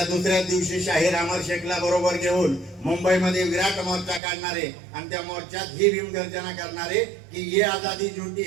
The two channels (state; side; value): drops out; left; at 4.2 s